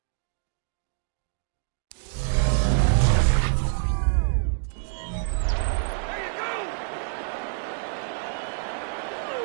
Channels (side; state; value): left; silent; digital silence